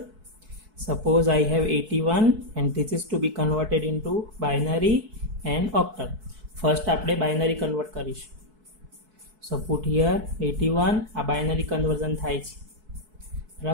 Suppose I have 81 and this is to be converted into binary and octal. First આપણે binary convert કરીશું. સો પુટ હિયર 81. આ બાઇનરી કન્વર્ઝન થાય છે,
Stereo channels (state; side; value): late; left; 4.6 ms